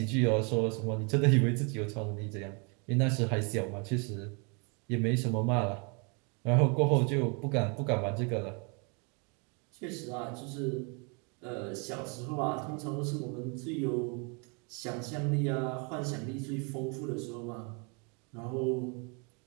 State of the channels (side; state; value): left; quieter; 34.4 dB